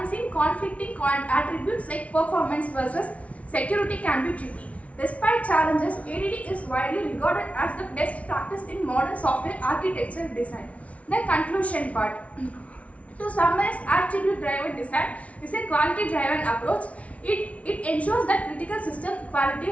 conflicting attributes like performance versus security can be tricky. Despite challenges, ADD is widely regarded as the best practice in modern software architecture design. The conclusion part. To summarize, attribute-driven design is a quality-driven approach. It ensures that critical system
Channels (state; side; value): late; right; 0.065 ms